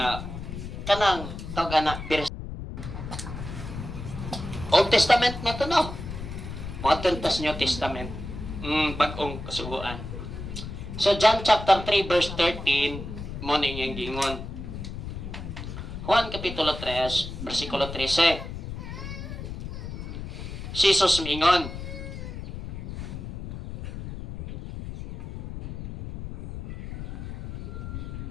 kanang tawag na, Old Testament na to, no? Mga tas New Testament. Bagong kasuguan. So, John chapter 3, verse 13, mo na inyong gingon. Juan kapitulo 3, versikulo 13. Si Jesus mingon.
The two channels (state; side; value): noise; left; rumble, 8 dB below the sound